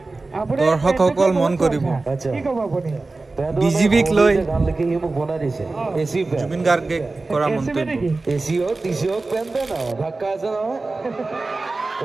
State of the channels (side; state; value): left; quieter; 3.4 dB